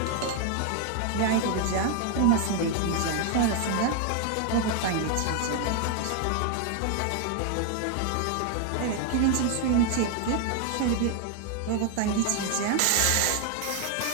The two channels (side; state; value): both; different; correlation 0.00